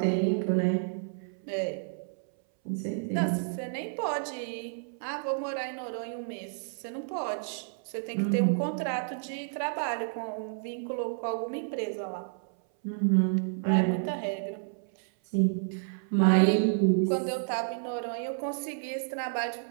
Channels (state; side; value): silent; left; 58 dB below the other